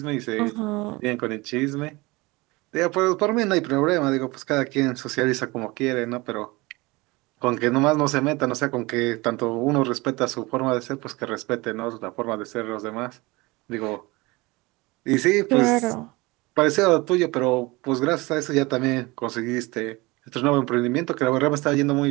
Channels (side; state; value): left; quieter; 23.2 dB